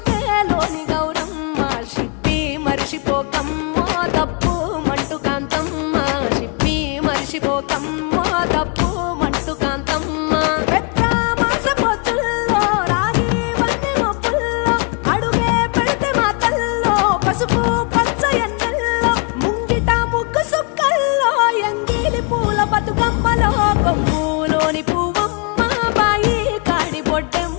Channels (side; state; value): right; quieter; 34.7 dB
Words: గౌరమ్మ షిప్పి మరిషిపోకమ్మో తప్పు మంటు కాంతమ్మ షిప్పి మరిషిపోకమ్మో తప్పు మంటు కాంతమ్మ పసుపు పచ్చ ఎన్నెల్లో ముంగిట ముగ్గు సుక్కల్లో ఎంగిలి పూల బతుకమ్మలో కొమ్ములోని పువ్వమ్మ బాయి కాడి